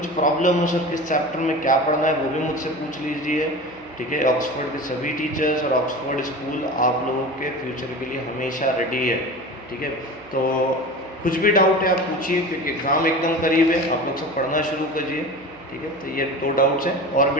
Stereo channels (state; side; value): noise; right; hum, 27 dB below the sound